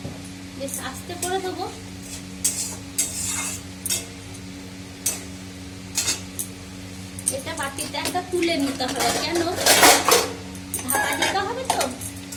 বেশ আস্তে করে দেবো। এটা বাটিতে একটা তুলে নিতে হবে, কেন ঢাকা দিতে হবে তো।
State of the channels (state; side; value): identical; both; correlation 1.00